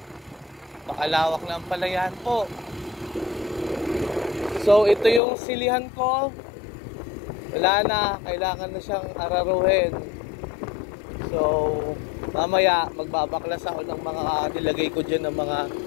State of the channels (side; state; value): right; drops out; at 5.2 s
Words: Pakalawak na ang palayan po. So ito yung silihan ko. Wala na, kailangan na siyang araruhin. So mamaya magbabaklas ako ng mga nilagay ko dyan ng mga